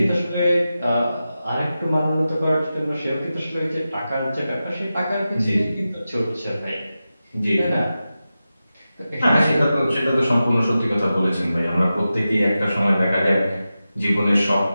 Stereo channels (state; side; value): inverted; both; correlation -0.93